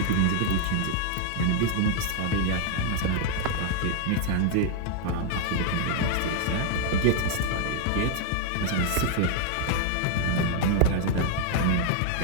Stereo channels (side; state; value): both; different; correlation 0.00